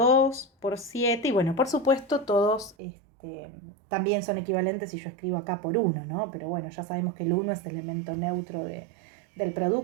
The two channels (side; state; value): left; drops out; at 2.8 s